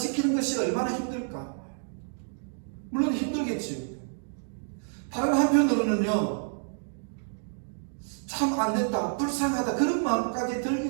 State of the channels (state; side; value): silent; left; digital silence